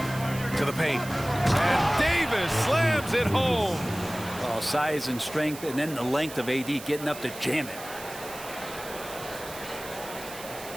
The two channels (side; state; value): right; noise; hiss, 13 dB below the sound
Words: To the paint. And Davis slams it home. Oh, size and strength, and then the length of AD getting up to jam it.